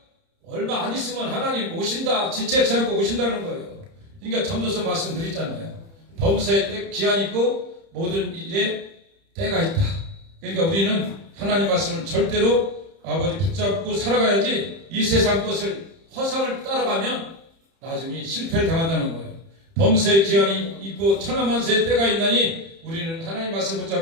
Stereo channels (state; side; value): late; left; 30 ms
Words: 얼마 안 있으면 하나님 오신다. 지체치 않고 오신다는 거예요. 그러니까 전도서 말씀드렸잖아요. 범사에 때 기한이 있고 모든 일에 때가 있다. 그러니까 우리는 하나님 말씀을 절대로 아버지 붙잡고 살아가야지 이 세상 것을 허상을 따라가면 나중에 실패를 당한다는 거예요. 범사에 기한이 있고 천하만세의 때가 있나니 우리는 하나님 말씀